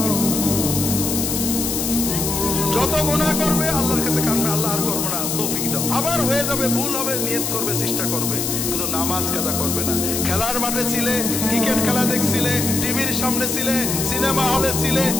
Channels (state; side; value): noise; left; hiss, 1 dB below the sound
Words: যত গুনাহ করবে আল্লাহর কাছে কাঁদবে, আল্লাহ আর করবো না, তৌফিক দাও। আবার হয়ে যাবে, ভুল হবে, নিয়ত করবে, চেষ্টা করবে, কিন্তু নামাজ কাজা করবে না। খেলার মাঠে ছিলে, ক্রিকেট খেলা দেখছিলে, টিভির সামনে ছিলে, সিনেমা হলে ছিলে,